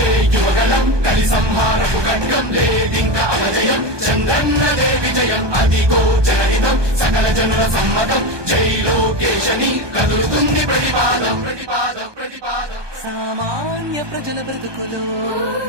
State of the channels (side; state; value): left; late; 1.2 ms